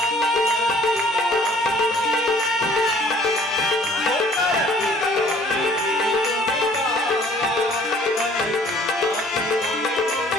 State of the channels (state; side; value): normal; both; correlation 0.55